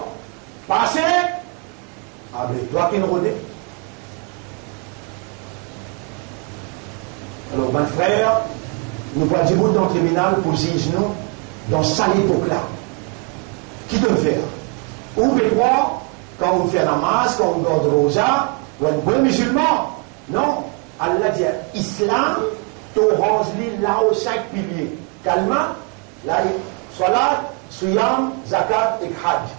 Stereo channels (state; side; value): quieter; left; 33.6 dB